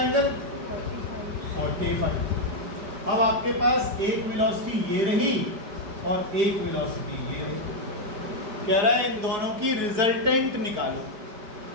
एंगल, 45। अब आपके पास एक वेलोसिटी ये रही और एक वेलोसिटी ये रही, कह रहा है इन दोनों की रिजल्टेंट निकालो।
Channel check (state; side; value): late; left; 5.0 ms